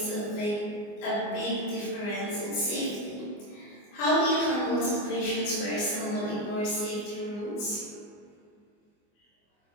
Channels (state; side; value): late; right; 24 ms